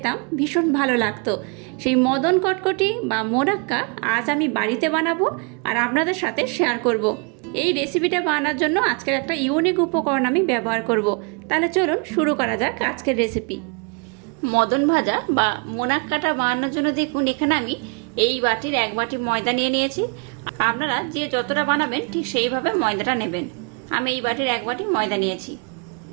ভীষণ ভালো লাগতো। সেই মদন কটকটি বা মোনাক্কা আজ আমি বাড়িতে বানাবো আর আপনাদের সাথে শেয়ার করব। এই রেসিপিটা বানানোর জন্য আজকের একটা ইউনিক উপকরণ আমি ব্যবহার করব। তাহলে চলুন শুরু করা যাক আজকের রেসিপি। মদন ভাজা বা মোনাক্কাটা বানানোর জন্য দেখুন এখানে আমি এই বাটির 1 বাটি ময়দা নিয়ে নিয়েছি। আপনারা যে যতটা বানাবেন ঠিক সেইভাবে ময়দাটা নেবেন। আমি এই বাটির 1 বাটি ময়দা নিয়েছি।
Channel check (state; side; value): quieter; left; 35.5 dB